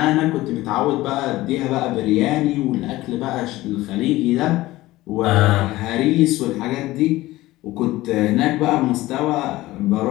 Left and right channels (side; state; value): right; quieter; 17.7 dB